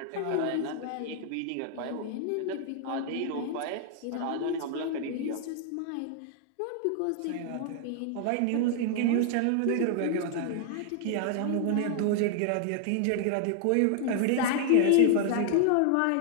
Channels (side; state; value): both; different; correlation 0.00